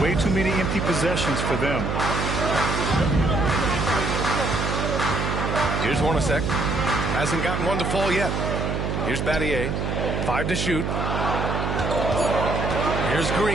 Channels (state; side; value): noise; right; hum, 1 dB below the sound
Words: too many empty possessions for them. Here's Hornacek. Hasn't gotten one to fall yet. Here's Battier. 5 to shoot. Here's